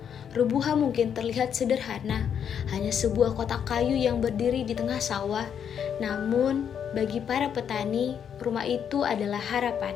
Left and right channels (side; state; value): right; quieter; 8.2 dB